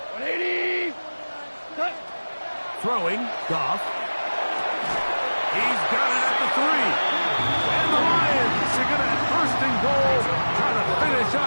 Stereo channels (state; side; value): inverted; both; correlation -1.00